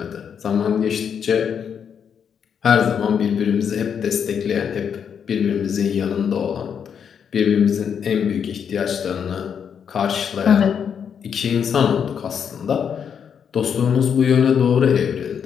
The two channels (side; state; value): right; quieter; 7.5 dB